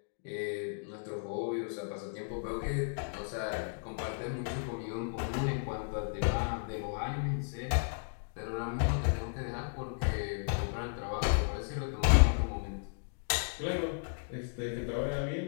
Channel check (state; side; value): silent; right; digital silence